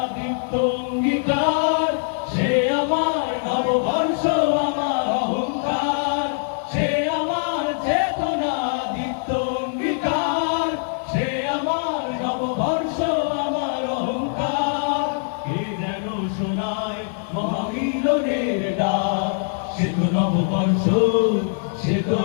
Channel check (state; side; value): silent; right; 64 dB below the other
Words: দীপ্ত অঙ্গীকার, সে আমার নববর্ষ, আমার অহংকার। সে আমার চেতনা দীপ্ত অঙ্গীকার, সে আমার নববর্ষ, আমার অহংকার। কে যেন শোনায় মহামিলনের ডাক, সে তো নববর্ষ, সে তো